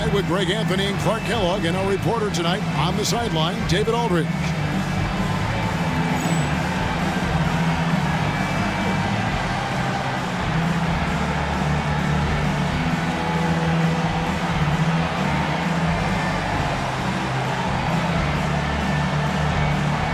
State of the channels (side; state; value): both; identical; correlation 1.00